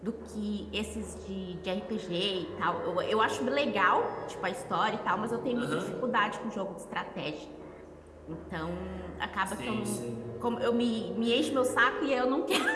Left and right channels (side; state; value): both; identical; correlation 1.00